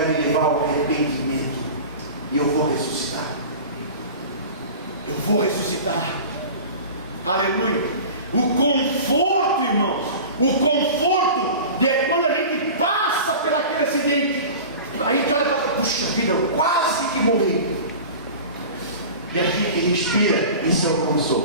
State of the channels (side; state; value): both; inverted; correlation -0.35